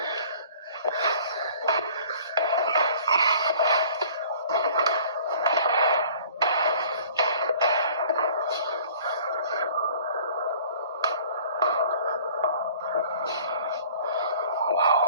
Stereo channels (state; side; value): inverted; both; correlation -0.50